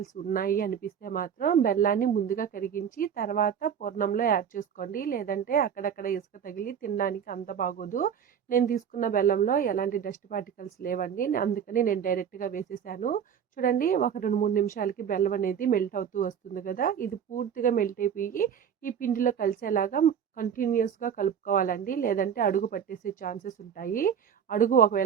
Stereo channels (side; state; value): left; quieter; 8.1 dB